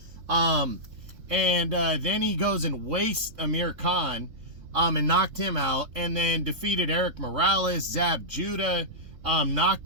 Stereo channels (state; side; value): late; left; 3.6 ms